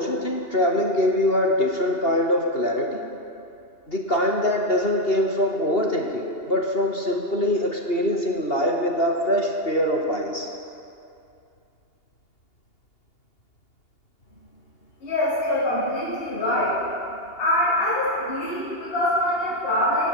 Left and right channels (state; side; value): late; right; 2.8 ms